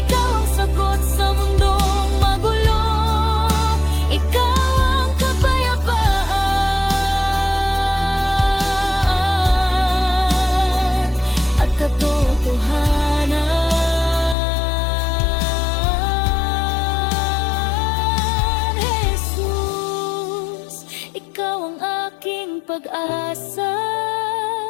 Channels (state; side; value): drops out; right; at 14.4 s